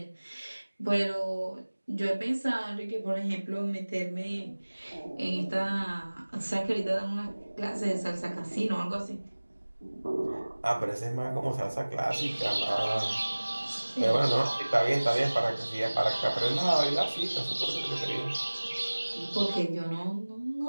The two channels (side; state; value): both; inverted; correlation -1.00